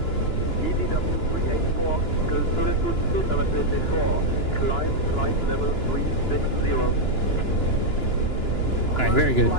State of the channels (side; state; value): right; late; 2.9 ms